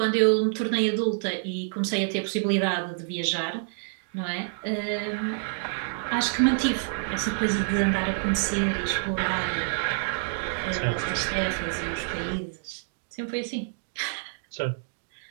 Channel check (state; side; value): silent; left; digital silence